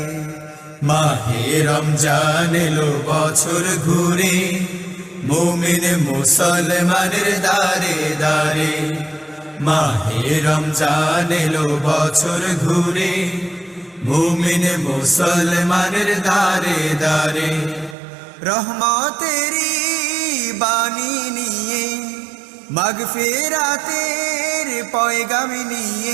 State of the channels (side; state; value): left; drops out; at 17.9 s